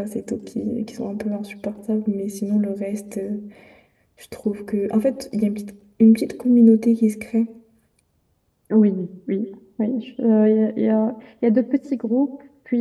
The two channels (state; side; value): identical; both; correlation 1.00